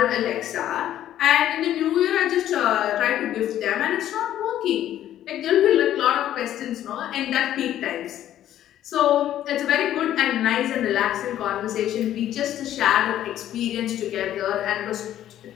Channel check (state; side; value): quieter; right; 11.9 dB